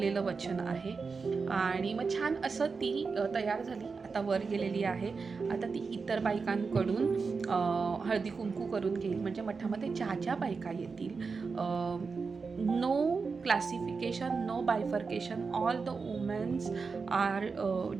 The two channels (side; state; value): left; quieter; 4.8 dB